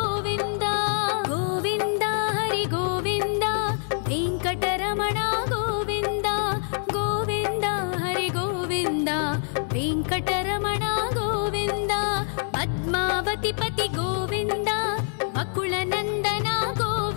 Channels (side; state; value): right; silent; 57 dB below the other